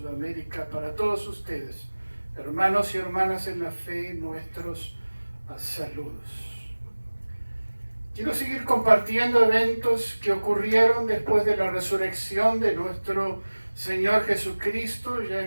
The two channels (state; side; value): inverted; both; correlation -1.00